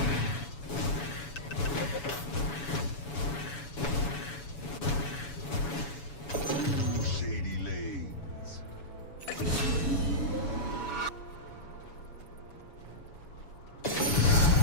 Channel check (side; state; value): right; late; 7.1 ms